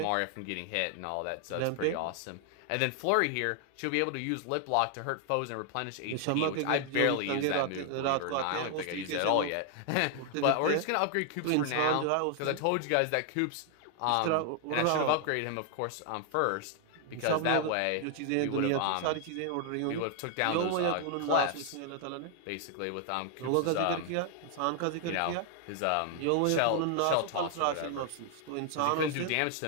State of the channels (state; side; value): different; both; correlation 0.00